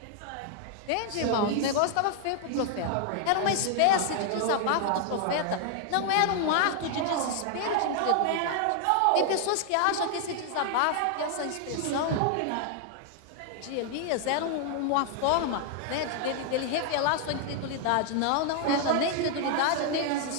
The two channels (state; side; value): different; both; correlation 0.00